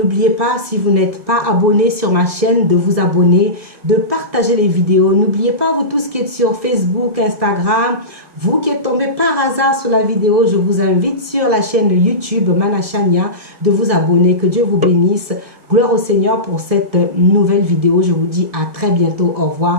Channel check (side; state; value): left; late; 1.7 ms